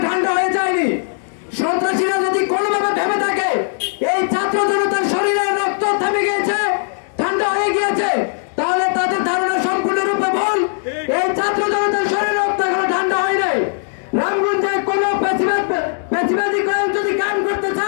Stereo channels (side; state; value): right; silent; digital silence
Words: ঠান্ডা হয়ে যায়নি। সন্ত্রাসীরা যদি কোনোভাবে ভেবে থাকে এই ছাত্র জনতার শরীরের রক্ত থেমে গিয়েছে, ঠান্ডা হয়ে গিয়েছে, তাহলে তাদের ধারণা সম্পূর্ণরূপে ভুল। এই ছাত্র জনতার শরীরের রক্ত এখনো ঠান্ডা হয় নাই। রামগঞ্জে কোনো পেশিবাদী কাজ যদি কাম করতে